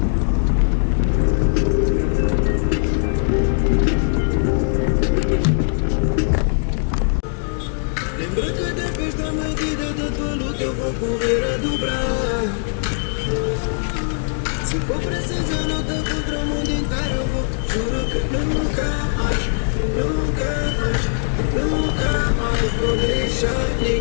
Lembra que depois da medida da tua luta eu vou correr a dobrar. Se for preciso eu luto contra o mundo inteiro, eu vou. Juro que nunca mais, nunca mais, nunca mais vou deixar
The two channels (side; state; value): right; silent; digital silence